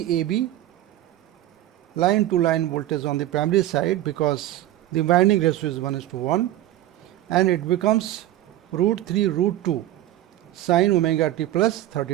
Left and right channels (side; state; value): left; quieter; 13.7 dB